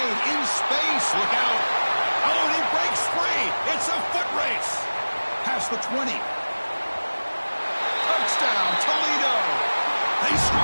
in space. Look out. Oh, and he breaks free. It's a foot race. Past the 20. Touchdown, Toledo. They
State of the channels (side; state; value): both; inverted; correlation -1.00